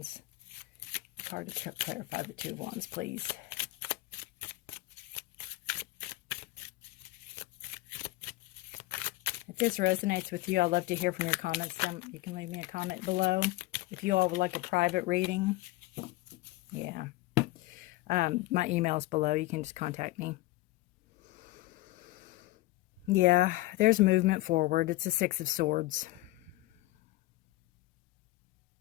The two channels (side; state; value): right; quieter; 18.9 dB